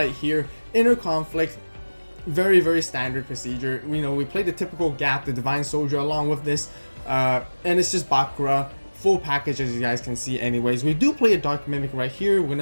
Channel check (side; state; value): both; inverted; correlation -1.00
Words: here. Inner Conflict, very standard procedure. You know, we play the typical Gap, the Divine Soldier along with this, and it's just Bakura. Full package, as you guys can see. Anyways, we do play a Dark Mimic right here. We're